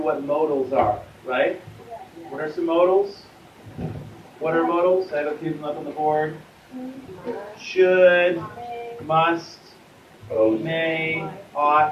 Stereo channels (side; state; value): both; identical; correlation 1.00